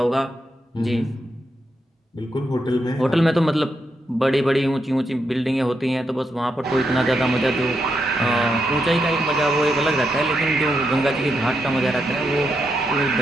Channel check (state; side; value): normal; both; correlation 0.82